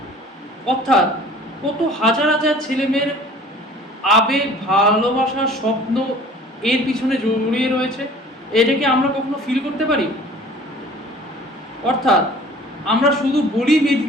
অর্থাৎ কত হাজার হাজার ছেলেমেয়ের আবেগ, ভালোবাসা, স্বপ্ন এর পিছনে জড়িয়ে রয়েছে। এটাকে আমরা কখনো ফিল করতে পারি? অর্থাৎ আমরা শুধু বলি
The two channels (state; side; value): normal; both; correlation 0.48